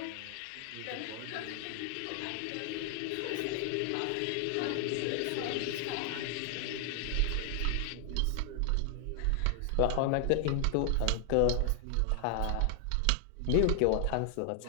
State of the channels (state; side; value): different; both; correlation 0.00